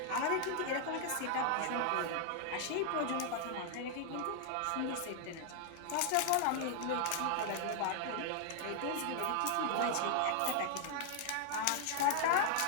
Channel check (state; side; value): different; both; correlation 0.00